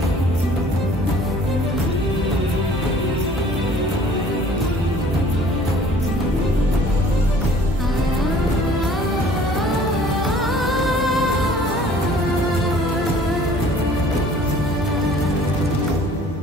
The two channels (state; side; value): normal; both; correlation 0.52